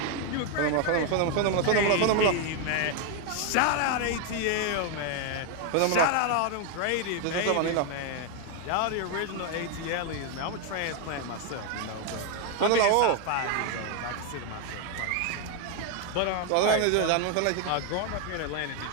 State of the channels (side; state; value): both; different; correlation 0.01